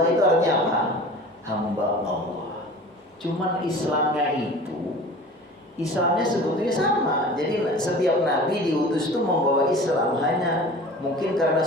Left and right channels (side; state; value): both; normal; correlation 0.40